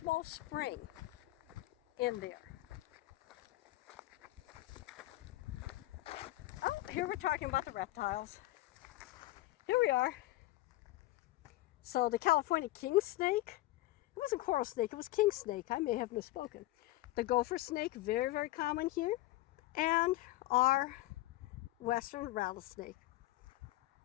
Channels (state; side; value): quieter; right; 17.3 dB